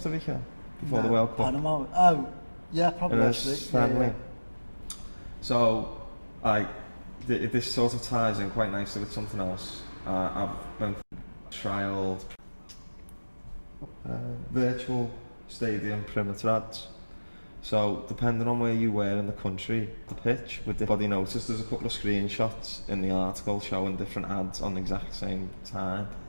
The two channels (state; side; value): inverted; both; correlation -1.00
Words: Rica before the World Cup? Panama. Oh, yeah, probably actually. Friendly. Yeah. So, like, this sort of ties in quite nicely with something else. I've been trialled virtual stadium perimeter ads. So, depending on where you were in the country, the pitch, with the body notice, there's a couple of screenshots in the article showing different ads on the exact same time.